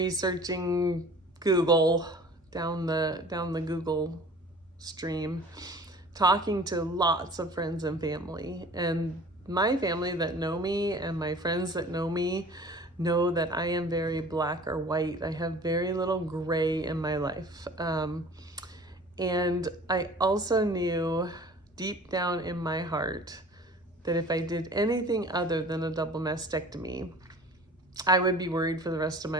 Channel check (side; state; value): both; normal; correlation 0.45